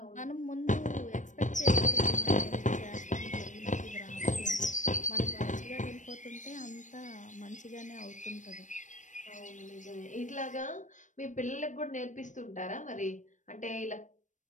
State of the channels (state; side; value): late; right; 0.36 ms